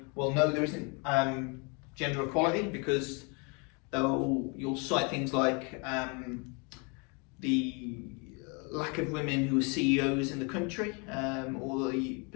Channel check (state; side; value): quieter; right; 32.7 dB